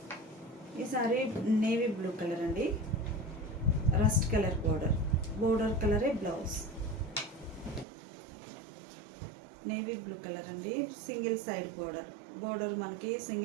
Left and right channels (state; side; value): drops out; left; at 7.9 s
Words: ఈ సారీ నేవీ బ్లూ కలర్ అండి, రస్ట్ కలర్ బోర్డర్ కలరే బ్లౌజ్. నేవీ బ్లూ కలర్ అండి, సింగిల్ సైడ్ బోర్డర్ మనకి